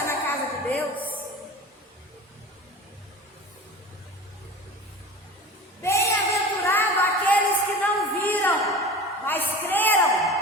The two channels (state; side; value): normal; both; correlation 0.36